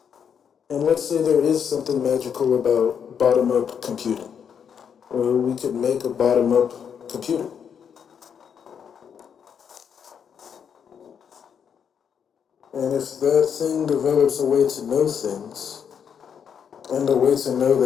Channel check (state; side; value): quieter; right; 7.6 dB